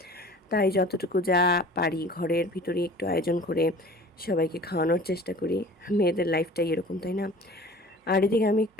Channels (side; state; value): both; normal; correlation 0.44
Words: তাই যতটুকু যা পারি ঘরের ভিতরে একটু আয়োজন করে সবাইকে খাওয়ানোর চেষ্টা করি। মেয়েদের লাইফটাই এরকম, তাই না? আর এদিকে আমি